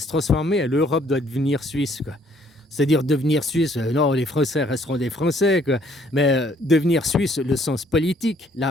transformer et l'Europe doit devenir suisse, quoi. C'est-à-dire devenir suisse, non, les Français resteront des Français, quoi. Mais devenir suisse, le sens politique,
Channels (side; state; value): both; normal; correlation 0.63